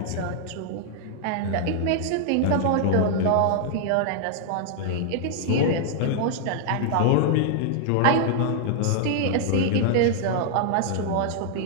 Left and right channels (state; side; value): different; both; correlation -0.01